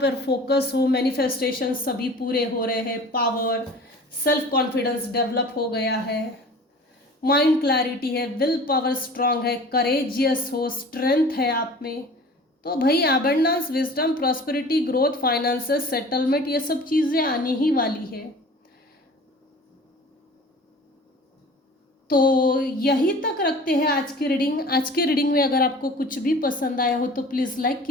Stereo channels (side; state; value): both; normal; correlation 0.43